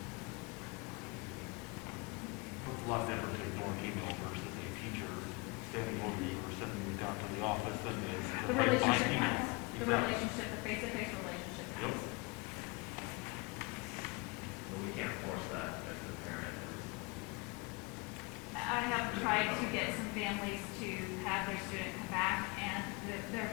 It's a lot better to ignore an email versus a teacher standing over you or sending you down to the office and it's The by relationship email. counts. The Exactly. relationship, the face-to-face relationship counts. But we can't force that if the parent is. I have tried to get some families to have their student come back, and their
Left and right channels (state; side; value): quieter; right; 26.6 dB